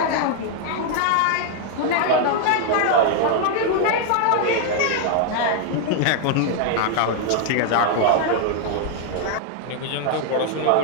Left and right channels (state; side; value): different; both; correlation 0.00